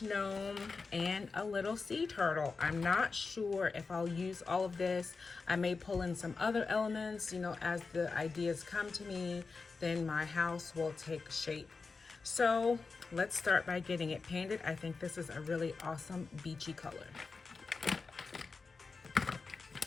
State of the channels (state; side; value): quieter; right; 4.4 dB